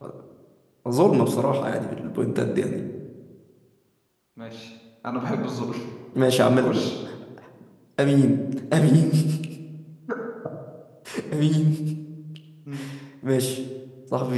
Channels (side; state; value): both; identical; correlation 1.00